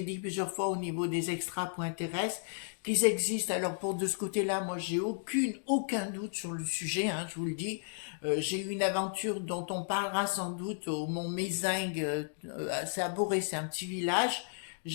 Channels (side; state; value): right; silent; digital silence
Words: dit plusieurs fois au niveau des extra.terrestres, qu'ils existent. Alors, pour de ce côté-là, moi, j'ai aucun doute sur le sujet. Hein, je vous le dis. J'ai eu une aventure dont on parlera sans doute au Mont Mézingue. C'est à Boré, c'est un petit village.